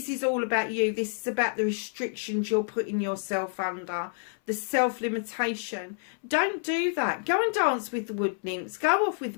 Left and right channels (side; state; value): right; silent; 59 dB below the other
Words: is all about you. This is about the restrictions you're putting yourself under, the self-limitation. Don't do that. Go and dance with the wood nymphs. Go off with